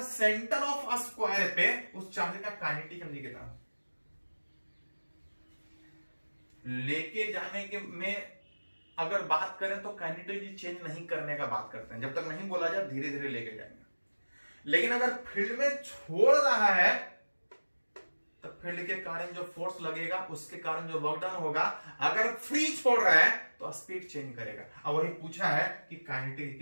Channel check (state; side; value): inverted; both; correlation -1.00